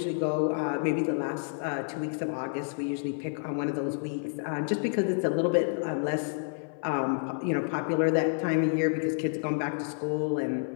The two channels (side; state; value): right; silent; 58 dB below the other